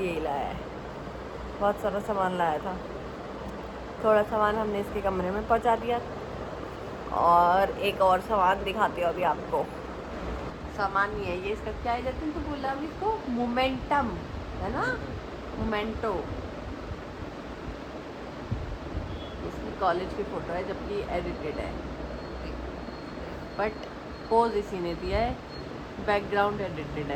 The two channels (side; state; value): both; identical; correlation 1.00